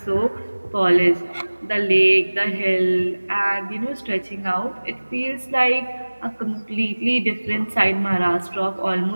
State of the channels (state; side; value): inverted; both; correlation -1.00